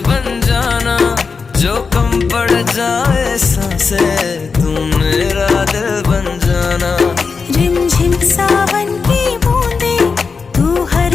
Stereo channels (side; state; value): right; quieter; 5.0 dB